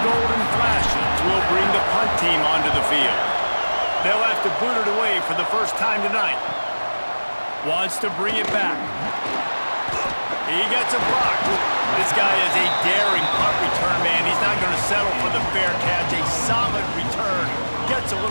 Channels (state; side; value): inverted; both; correlation -1.00